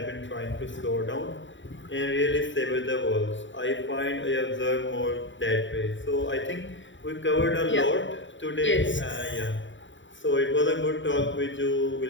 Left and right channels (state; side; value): late; right; 0.55 ms